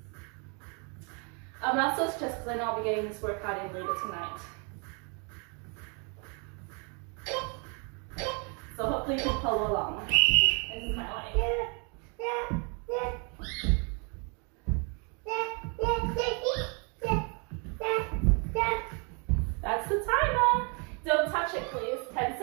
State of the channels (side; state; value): left; quieter; 35.7 dB